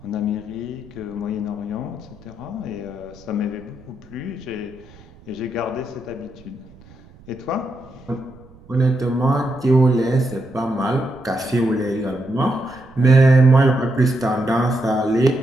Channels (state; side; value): noise; right; rumble, 23 dB below the sound